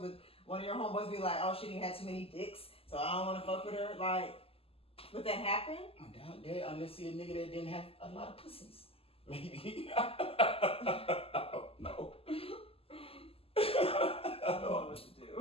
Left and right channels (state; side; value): late; right; 0.28 ms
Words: Would one of your homeboys be like, "Oh, she didn't have too many dicks, so I don't want to fuck with her"? Like, Would that happen? I doubt that unless you're a nigga that didn't have a lot of pussies. Maybe. I don't know. I don't know what to